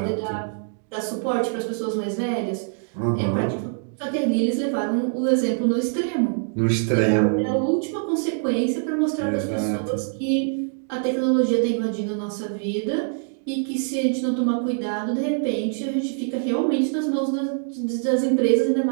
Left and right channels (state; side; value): silent; left; digital silence